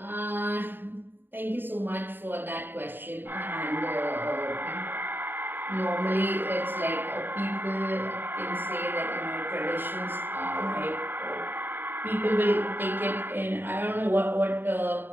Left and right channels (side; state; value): left; late; 0.095 ms